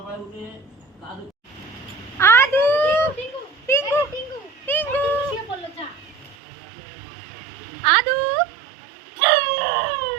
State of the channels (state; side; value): drops out; left; at 6.4 s